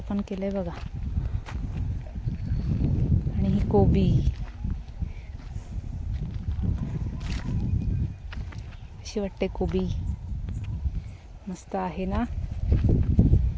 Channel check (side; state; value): both; identical; correlation 1.00